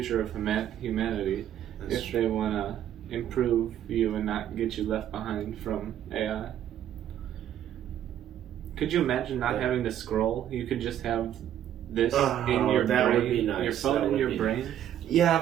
of humanity. That's if they want to improve you and not get you left behind from AI. Could you imagine not having to scroll? You could just have this in your that brain. Would be nice. Your phone in your brain. Yeah,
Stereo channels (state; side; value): quieter; left; 10.9 dB